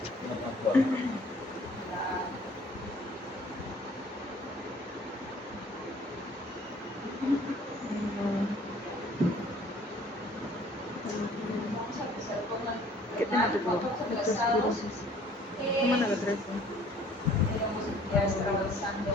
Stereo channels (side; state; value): both; normal; correlation 0.55